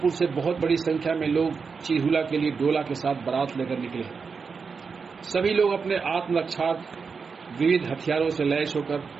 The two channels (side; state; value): left; quieter; 5.3 dB